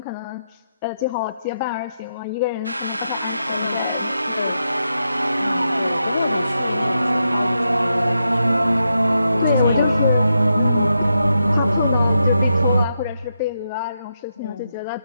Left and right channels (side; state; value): both; inverted; correlation -0.84